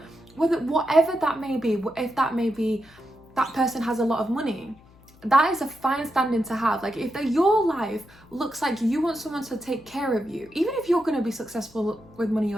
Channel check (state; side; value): noise; left; hum, 26 dB below the sound